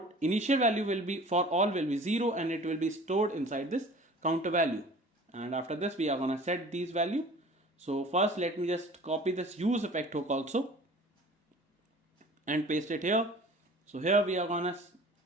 Initial value will be for all will be 0, and it will be stored inside this counter value, and after this we are gonna set these value. So first let me just copy this use effect hook also and paste it here. So here we are gonna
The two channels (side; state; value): both; normal; correlation 0.45